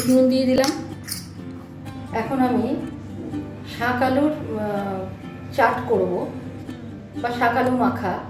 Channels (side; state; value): both; identical; correlation 1.00